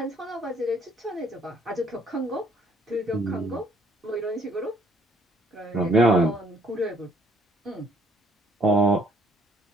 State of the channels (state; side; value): normal; both; correlation 0.63